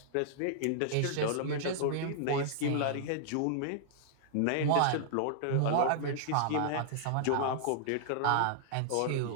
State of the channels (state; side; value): different; both; correlation -0.01